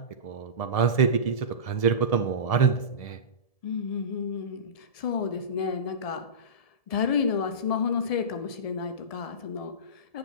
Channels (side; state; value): right; late; 1.7 ms